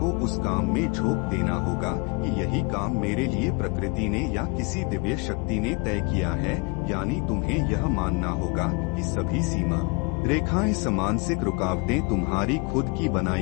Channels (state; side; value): quieter; right; 30.6 dB